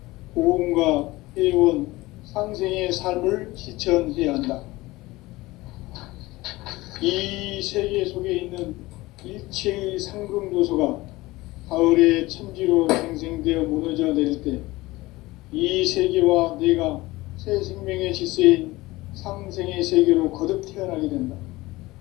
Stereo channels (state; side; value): quieter; right; 19.9 dB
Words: 보험과 회원, 상생의 삶을 실천해야 한다. 이 세계 속에 있는 일체의 상금 요소가 가을의 천지로 생생되어 무너져 내릴 때 이 세계와 내가 새 생명의 질서인 상생의 세계로 거듭 태어나게 된다.